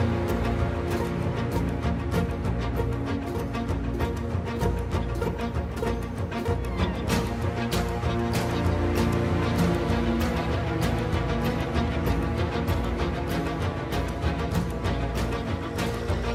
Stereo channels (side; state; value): both; identical; correlation 1.00